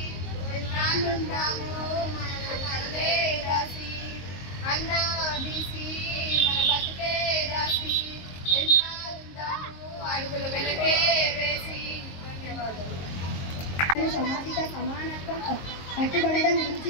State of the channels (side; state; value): right; late; 22 ms